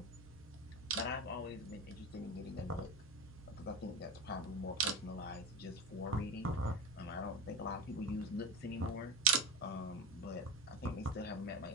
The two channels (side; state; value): both; normal; correlation 0.25